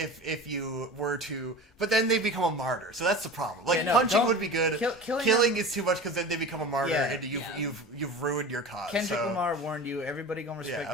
you were to, but then they become a martyr. So that's the problem. Like Yeah, no, punching don't- would be good. killing Killing them- is too much because then they become a martyr Yeah. and you've ruined your cause. Kendrick so, Lamar warned you. Everybody gonna respect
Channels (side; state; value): both; normal; correlation 0.34